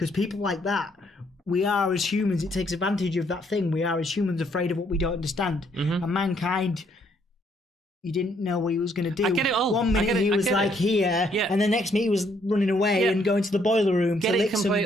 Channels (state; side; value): normal; both; correlation 0.69